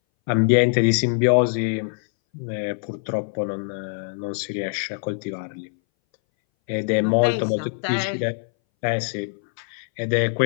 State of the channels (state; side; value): silent; right; 61 dB below the other